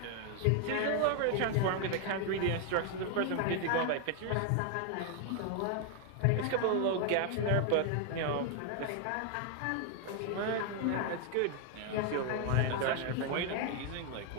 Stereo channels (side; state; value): both; different; correlation 0.00